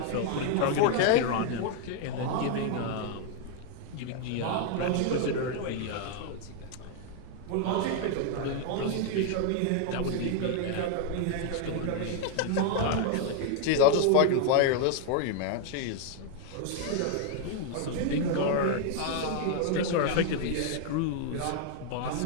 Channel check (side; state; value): both; different; correlation 0.00